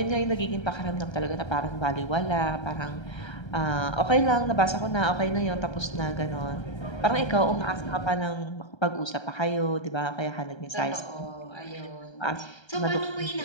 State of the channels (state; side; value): late; right; 1.3 ms